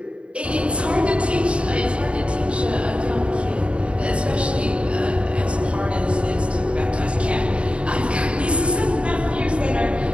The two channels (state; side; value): late; left; 0.059 ms